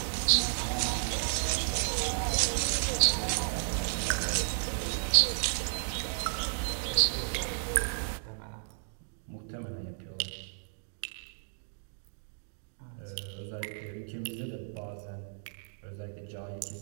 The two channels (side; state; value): left; silent; digital silence